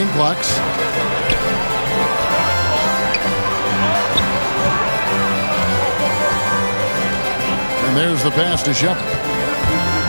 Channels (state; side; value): inverted; both; correlation -1.00